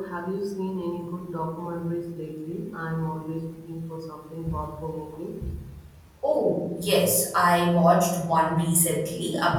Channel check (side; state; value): both; identical; correlation 1.00